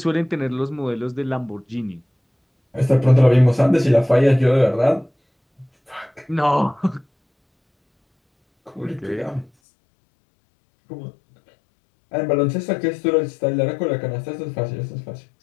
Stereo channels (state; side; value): drops out; right; at 9.5 s